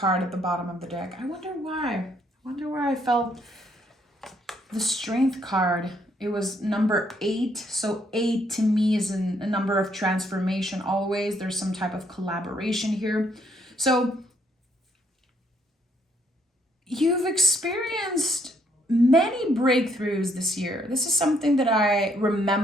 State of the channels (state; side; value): normal; both; correlation 0.70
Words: at the bottom of the deck. I wonder why. I felt the Strength card. It was number 8. So 8 to me is a number of transformation always. There's some type of collaboration here. So you've experienced many breakthroughs this year. This is something that I